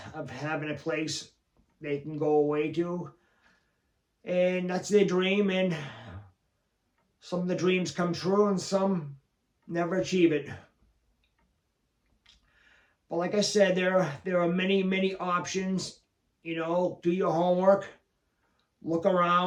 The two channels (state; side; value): identical; both; correlation 1.00